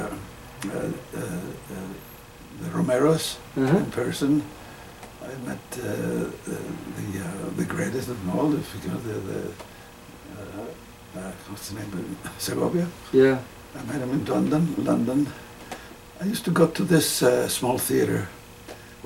Romeros in person. I met the greatest of them all. If you know what's the name? Segovia. Yeah. I met him in London. I used to go to this small theater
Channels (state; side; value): identical; both; correlation 1.00